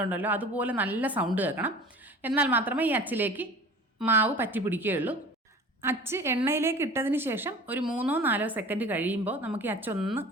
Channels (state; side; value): normal; both; correlation 0.41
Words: ഉണ്ടല്ലോ, അതുപോലെ നല്ല സൗണ്ട് കേൾക്കണം. എന്നാൽ മാത്രമേ ഈ അച്ചിലേക്ക് മാവ് പറ്റി പിടിക്കുകയുള്ളൂ. അച്ച് എണ്ണയിലേക്ക് ഇട്ടതിന് ശേഷം ഒരു 3-4 സെക്കൻഡ് കഴിയുമ്പോൾ നമുക്ക് ഈ അച്ചൊന്ന്